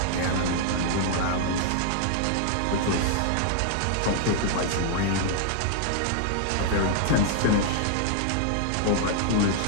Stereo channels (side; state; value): both; different; correlation -0.01